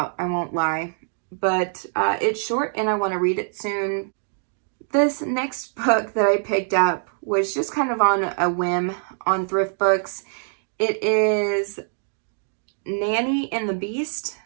I won't lie. But it's short and I want to read it soon. This next book that I picked up was just kind of on a whim on Thrift Books. It is Nanny and the Beast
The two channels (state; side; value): silent; left; digital silence